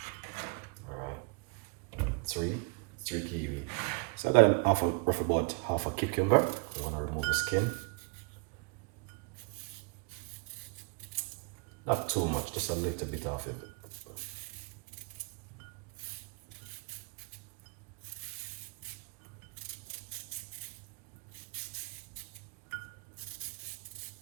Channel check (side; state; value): left; quieter; 31.7 dB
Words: Three kiwi. So I got roughly about half a cucumber. I'm gonna remove the skin. Not too much, just a little bit of it.